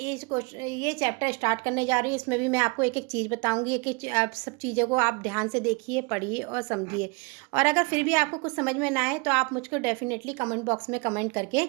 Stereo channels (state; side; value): quieter; left; 30.7 dB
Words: चैप्टर स्टार्ट करने जा रही हूँ। इसमें भी मैं आपको एक एक चीज़ बताऊंगी। एक एक आप सब चीज़ों को आप ध्यान से देखिए, पढ़िए और समझिए। और अगर फिर भी आपको कुछ समझ में ना आए तो आप मुझको डेफिनेटली कमेंट बॉक्स में कमेंट करके